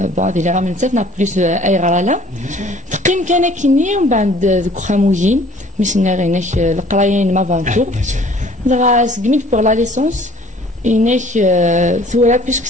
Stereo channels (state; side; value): normal; both; correlation 0.53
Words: بعض اللي راه من تسات نا بليس اي غرالا تقيم كان كيني ومن بعد ذوك خامويين مشنا غيناك القرايين ما فانتور دغا سكميت بور لا ليسونس إنك ثورة puisque